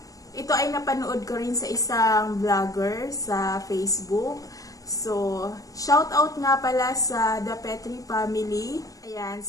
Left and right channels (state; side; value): late; right; 0.17 ms